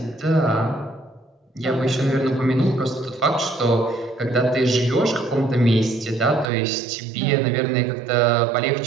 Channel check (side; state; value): left; drops out; at 6.5 s